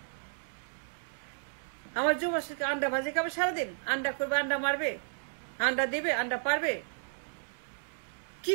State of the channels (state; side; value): silent; left; digital silence